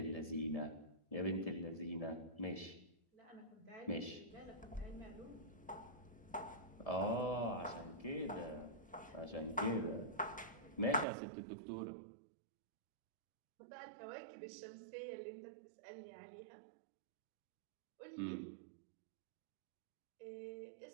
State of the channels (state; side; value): drops out; left; at 11.1 s